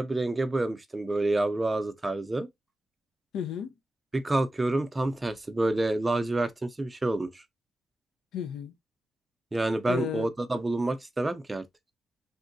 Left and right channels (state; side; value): normal; both; correlation 0.93